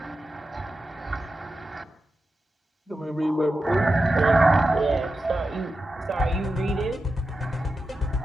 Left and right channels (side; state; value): both; normal; correlation 0.91